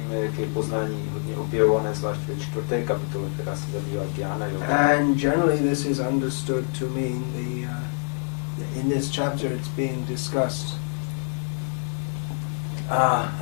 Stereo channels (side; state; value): right; silent; 61 dB below the other